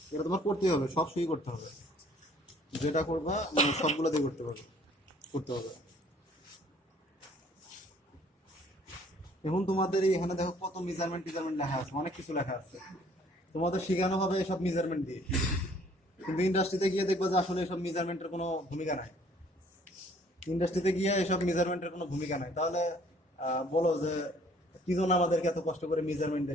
এটা তোমার করতেই হবে, সব সুই করতে হবে, যেটা করবা মানে সবগুলো দিয়ে করতে পারবে, করতে হবে। এখন তোমাদের এখানে দেখো কত মেজারমেন্ট লেখা আছে, অনেক কিছু লেখা আছে, তোমাদের শেখানো হবে এসব মেজারমেন্ট দিয়ে। কিন্তু ইন্ডাস্ট্রিতে গিয়ে দেখবা যে আসলে এসব মেজারমেন্টের কোনো ভূমিকা নাই, ইন্ডাস্ট্রিতে গিয়ে এসব মেজারমেন্টের কোনো ভূমিকা নাই। তাহলে বলো যে কি জন্য আমাদেরকে এত কষ্ট করে মেজারমেন্ট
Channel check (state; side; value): normal; both; correlation 0.58